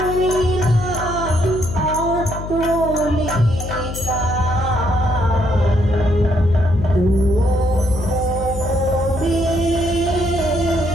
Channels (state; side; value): noise; left; hum, 8 dB below the sound